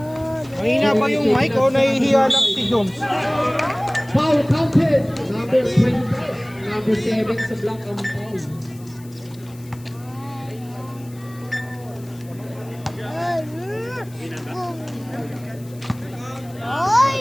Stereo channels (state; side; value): noise; left; hiss, 24 dB below the sound